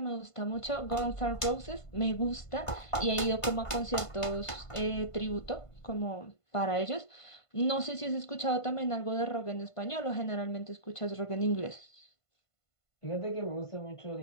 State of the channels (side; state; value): right; late; 1.5 ms